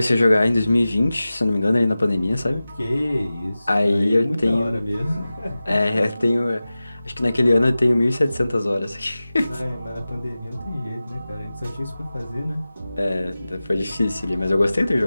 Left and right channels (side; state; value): both; inverted; correlation -0.96